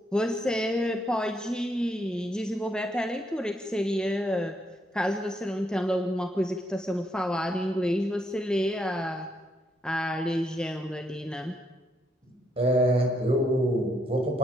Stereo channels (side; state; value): both; normal; correlation 0.75